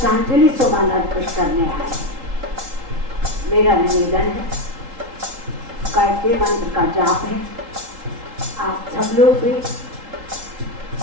सुमन अर्पित करने आए। मेरा निवेदन है, गायत्री मंत्र का जाप है, आप सब लोग भी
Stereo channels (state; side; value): late; left; 3.8 ms